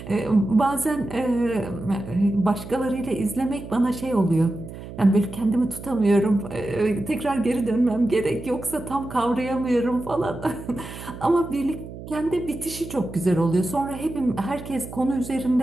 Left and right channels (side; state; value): right; noise; hum, 12 dB below the sound